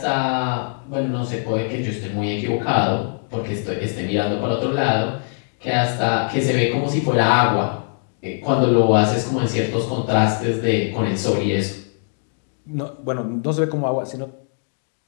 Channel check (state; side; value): silent; right; digital silence